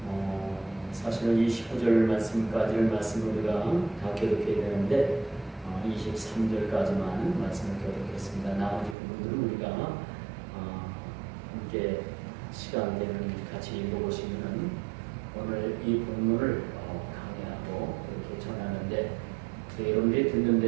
사실은 이 19절 말씀까지를 말씀을 우리가 다 교독해야 되는데 23절까지만 말씀을 교독했습니다. 나머지 부분들은 우리가 함께 시간 되는 같이 읽어보시면 오늘 이 본문을 강의하고 이렇게 전하는데 여러분들이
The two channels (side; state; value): left; drops out; at 9.0 s